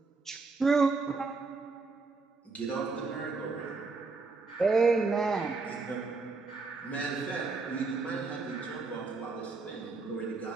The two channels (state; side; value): quieter; left; 4.1 dB